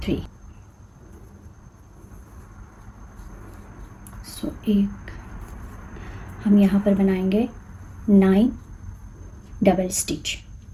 3। एक हम यहाँ पर बनाएंगे 9 डबल स्टिच।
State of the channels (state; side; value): identical; both; correlation 1.00